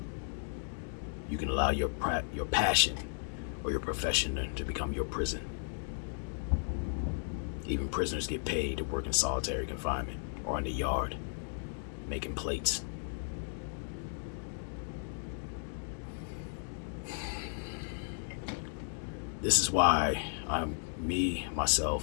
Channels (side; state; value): right; silent; digital silence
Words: you can allow your passion or your profession to become your prison. Even prisoners get paid to work in solitary confinement or in the yard, making plates. This is why